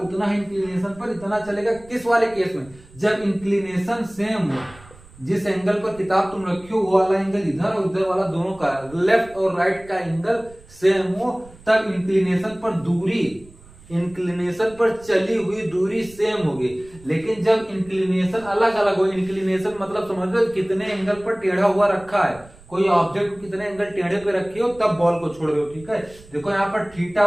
उतना ही इंक्लिनेशन पर इतना चलेगा। किस वाले केस में, जब इंक्लिनेशन सेम हो, जिस एंगल पर किताब तुम रखी हो वो वाला एंगल इधर और इधर वाला दोनों का, लेफ्ट और राइट का एंगल सेम हो, तब इंक्लिनेशन पर दूरी, इंक्लिनेशन पर चली हुई दूरी सेम होगी। लेकिन जब इंक्लिनेशन अलग अलग हो, इंक्लिनेशन मतलब समझ लो कितने एंगल पर टेढ़ा हुआ रखा है, कोई ऑब्जेक्ट को कितने एंगल टेढ़े पे रखी हो तब बॉल को छोड़ रहे हो, ठीक है। देखो यहाँ पर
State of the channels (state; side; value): noise; right; rumble, 23 dB below the sound